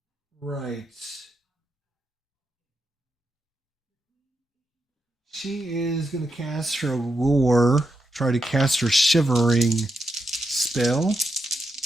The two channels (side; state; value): both; normal; correlation 0.85